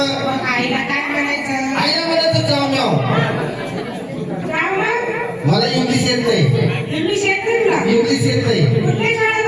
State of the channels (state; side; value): identical; both; correlation 1.00